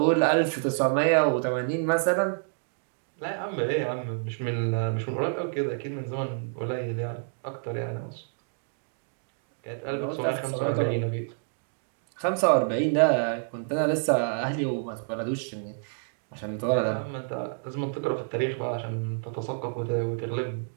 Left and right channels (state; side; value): silent; left; digital silence